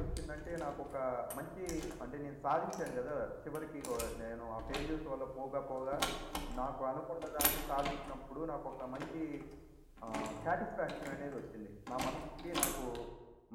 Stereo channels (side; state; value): both; identical; correlation 1.00